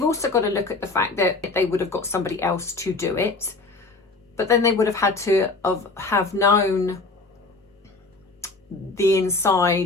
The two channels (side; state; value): right; quieter; 3.6 dB